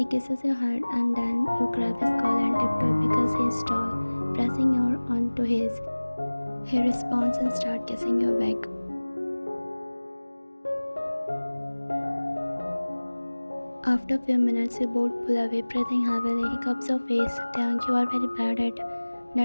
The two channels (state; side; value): inverted; both; correlation -1.00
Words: kisses your head and then you grab his collar and tiptoe because he is tall, pressing your onto his. He responds and starts kissing your back. After a few minutes, you both pull away, breathing heavily. He cups your face. Taeyang, you are very bad at.